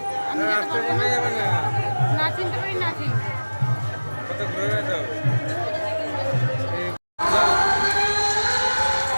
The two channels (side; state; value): both; inverted; correlation -1.00